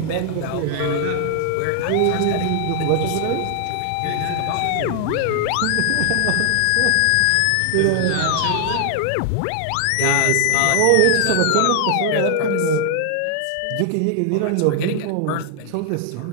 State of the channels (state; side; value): different; both; correlation 0.00